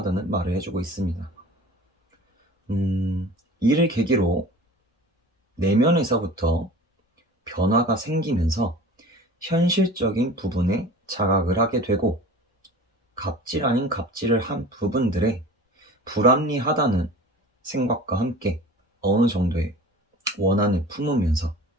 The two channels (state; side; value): normal; both; correlation 0.40